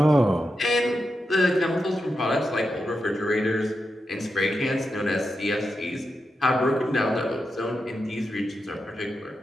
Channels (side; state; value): both; normal; correlation 0.88